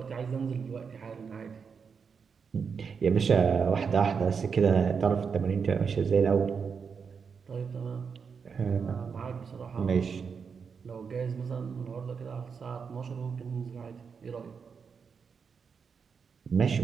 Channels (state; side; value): quieter; left; 6.0 dB